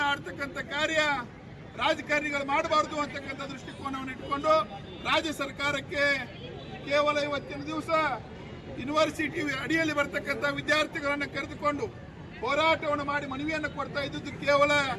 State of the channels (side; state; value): both; identical; correlation 1.00